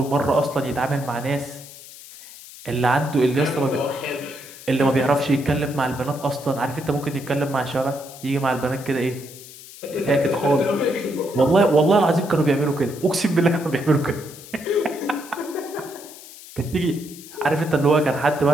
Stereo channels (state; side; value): noise; left; hiss, 17 dB below the sound